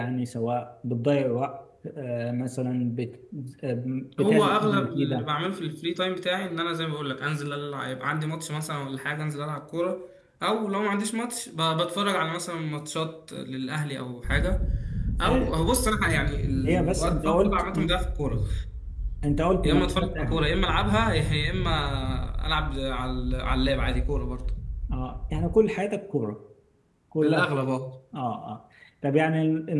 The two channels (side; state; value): both; identical; correlation 1.00